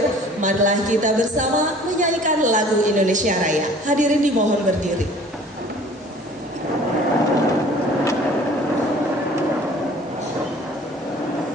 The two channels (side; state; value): both; normal; correlation 0.50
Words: marilah kita bersama menyanyikan lagu Indonesia Raya. Hadirin dimohon berdiri.